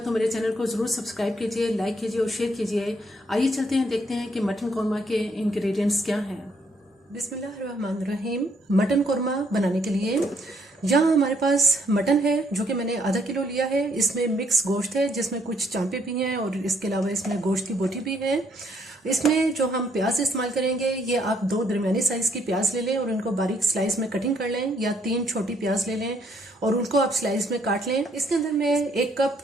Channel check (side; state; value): both; normal; correlation 0.69